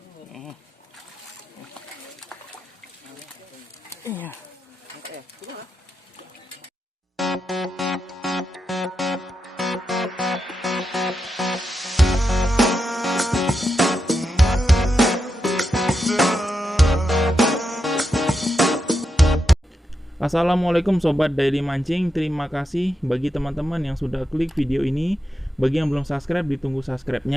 Iya. Assalamualaikum Sobat Daily Mancing. Terima kasih bagi teman-teman yang sudah klik video ini. Bagi yang belum subscribe, ditunggu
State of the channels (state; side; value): normal; both; correlation 0.86